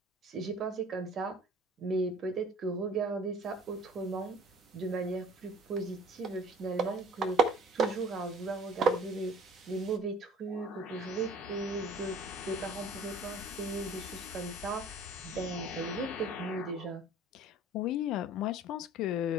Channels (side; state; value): both; normal; correlation 0.48